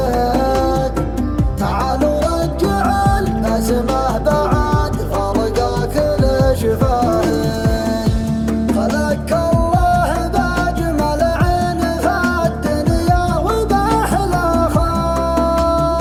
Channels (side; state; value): both; identical; correlation 1.00